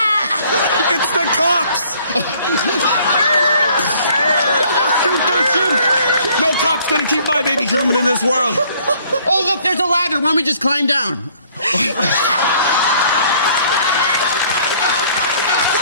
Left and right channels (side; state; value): both; inverted; correlation -0.59